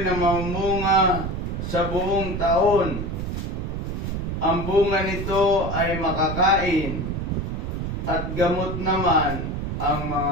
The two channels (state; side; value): noise; right; rumble, 4 dB below the sound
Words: na mamunga sa buong taon. Ang bunga nito ay makakain at gamot naman ang